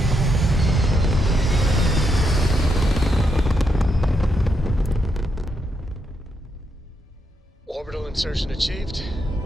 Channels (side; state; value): both; normal; correlation 0.80